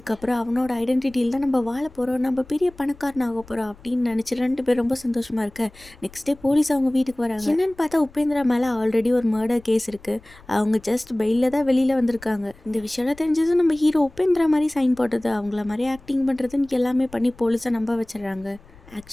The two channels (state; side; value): noise; left; rumble, 24 dB below the sound